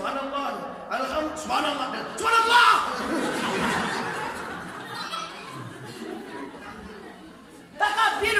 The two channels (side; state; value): both; identical; correlation 1.00